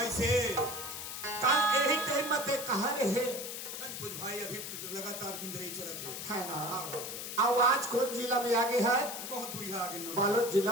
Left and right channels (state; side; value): noise; left; hiss, 7 dB below the sound